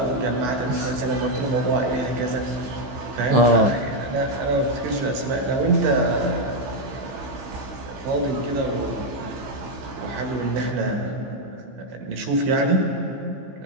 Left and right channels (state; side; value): late; left; 15 ms